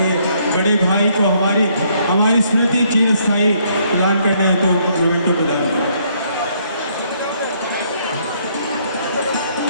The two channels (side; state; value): both; inverted; correlation -0.69